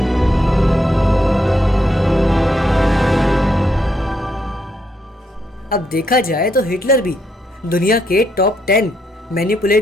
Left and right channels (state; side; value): normal; both; correlation 0.77